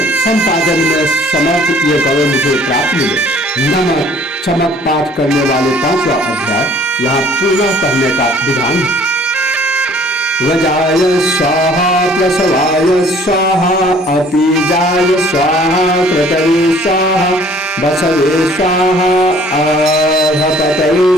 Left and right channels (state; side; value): normal; both; correlation 0.55